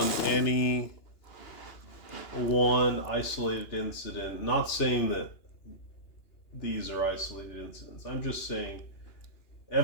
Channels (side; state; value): right; late; 2.9 ms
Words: any one isolated incident. Not saying that these are isolated incidents. I'm just saying